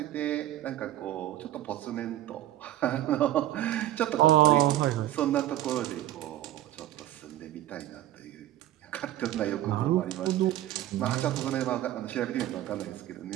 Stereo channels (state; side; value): quieter; left; 13.9 dB